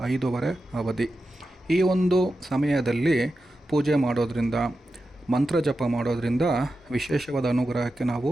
5:15 ಅವಧಿ. ಈ ಒಂದು ಸಮಯದಲ್ಲಿ ಪೂಜೆ ಮಾಡೋದ್ರಿಂದ, ಮಂತ್ರ ಜಪ ಮಾಡೋದ್ರಿಂದ ವಿಶೇಷವಾದ ಅನುಗ್ರಹಕ್ಕೆ ನಾವು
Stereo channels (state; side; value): normal; both; correlation 0.91